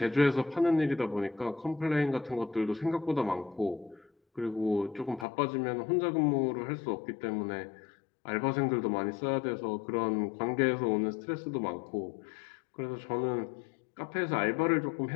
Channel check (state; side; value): drops out; right; at 5.2 s